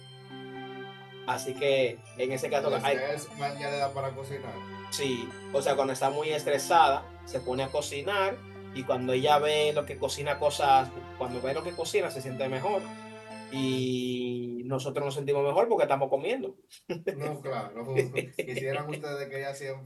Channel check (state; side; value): identical; both; correlation 1.00